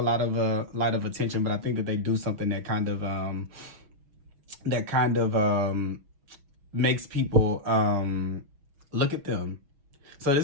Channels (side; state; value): left; late; 6.2 ms